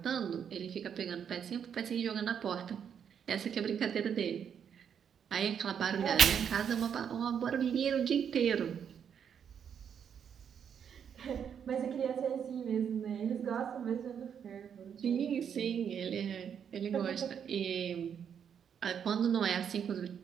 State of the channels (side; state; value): left; quieter; 7.9 dB